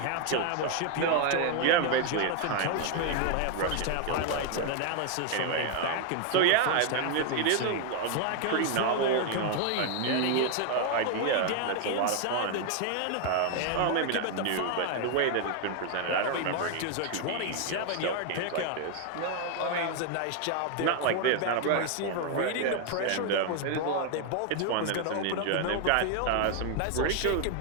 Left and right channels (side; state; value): both; different; correlation 0.01